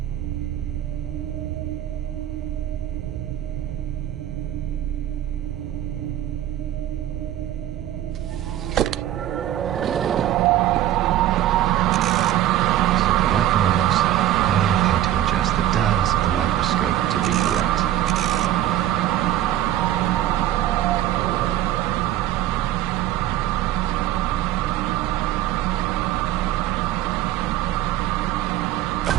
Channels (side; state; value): left; quieter; 12.6 dB